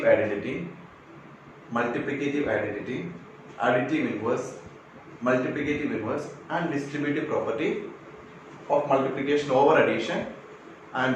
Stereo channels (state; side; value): identical; both; correlation 1.00